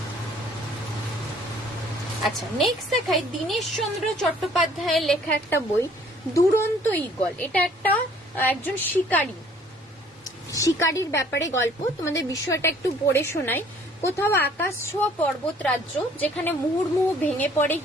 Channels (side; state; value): both; normal; correlation 0.57